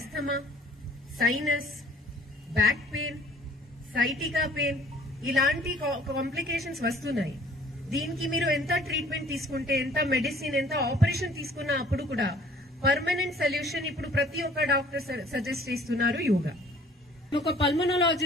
sinus, back pain, sciatica pain ఇలాంటి కాంప్లికేషన్స్ వస్తున్నాయి. దీనికి మీరు ఎంత ట్రీట్మెంట్ తీసుకుంటే, ఎంత మెడిసిన్, ఎంత ఆపరేషన్ తీసుకున్నా అప్పుడు కూడా పర్మనెంట్ సొల్యూషన్ ఇప్పుడు ప్రతి ఒక్క డాక్టర్ సజెస్ట్ చేస్తున్నారు యోగా. ఒక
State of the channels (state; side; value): normal; both; correlation 0.54